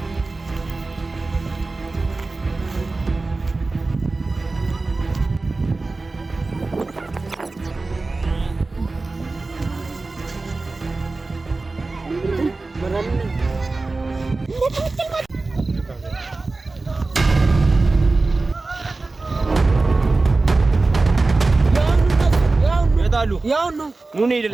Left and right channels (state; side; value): quieter; left; 3.5 dB